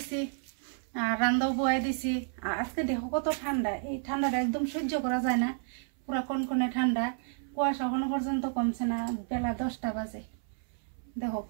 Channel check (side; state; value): left; silent; 57 dB below the other